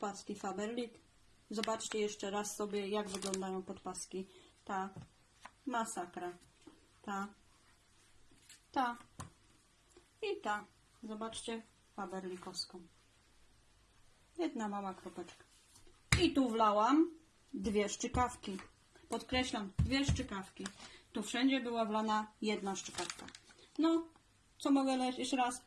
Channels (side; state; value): both; identical; correlation 1.00